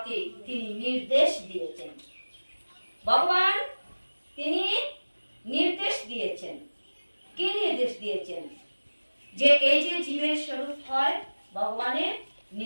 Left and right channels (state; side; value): inverted; both; correlation -1.00